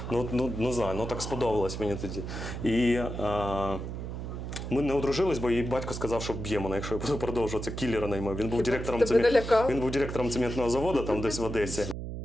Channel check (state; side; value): noise; right; hum, 6 dB below the sound